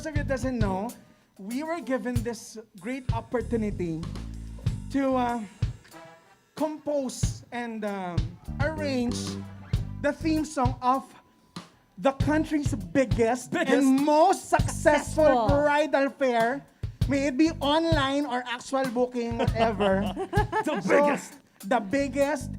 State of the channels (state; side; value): identical; both; correlation 1.00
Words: of you that doesn't know, we were given this great opportunity to compose and arrange the theme song of the country's biggest and most successful bridal fair. May it be online or actual booking, whatever. The biggest